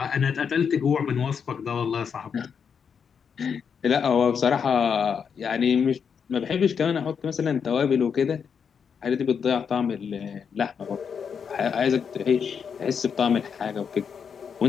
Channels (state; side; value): quieter; right; 6.7 dB